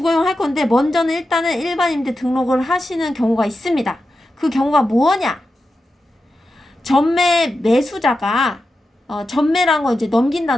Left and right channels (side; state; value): both; normal; correlation 0.90